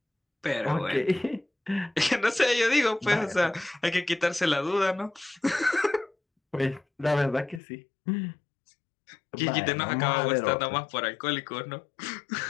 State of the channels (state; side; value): drops out; right; at 7.6 s